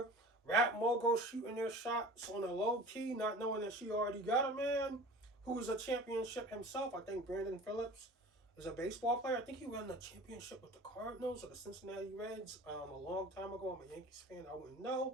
Rap moguls shooting their shots on a low key, not knowing that she already got a man who is a championship himself. I think Brandon Phillips is a baseball player. I think he won the championship with the Cardinals or the Cincinnati Reds a long time ago. I'm a Yankees fan. I wouldn't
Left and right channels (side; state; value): both; normal; correlation 0.41